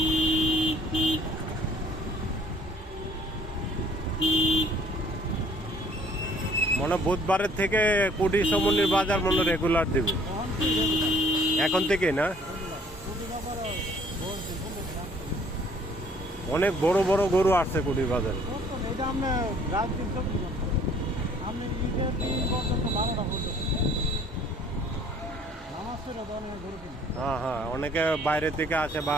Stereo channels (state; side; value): normal; both; correlation 0.58